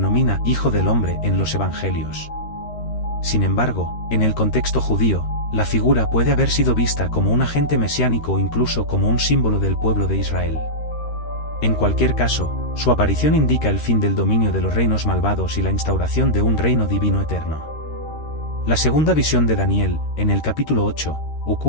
Hijo del Hombre en los Evangelios. Sin embargo, en el contexto judío, la figura puede haber sido vista como un agente mesiánico o incluso como un símbolo del pueblo de Israel. En cualquier caso, su aparición indica el fin del dominio de los reinos malvados y la instauración de un reino divino eterno. La segunda visión de Daniel, en el capítulo 8,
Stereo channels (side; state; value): right; late; 13 ms